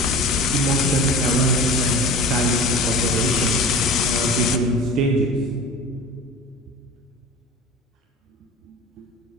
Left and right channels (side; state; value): both; normal; correlation 0.36